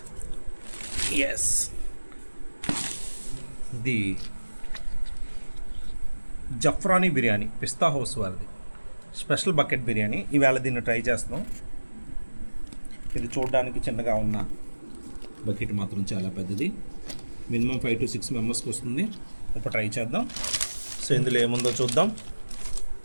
Yes, ఇది జఫ్రానీ బిర్యానీ పిస్తా హౌస్ వారిది స్పెషల్ బకెట్ బిర్యానీ. ఈవేళ దీన్ని ట్రై చేస్తున్నాం. ఇది చూడడానికి చిన్నగా ఉన్న బకెట్ మాత్రం చాలా పెద్దది. మినిమం 5 to 6 మెంబర్స్కి వస్తుంది. ఇప్పుడు ట్రై చేద్దాం. సో ఇందులో ఏముందో చూద్దాం.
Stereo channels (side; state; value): both; inverted; correlation -1.00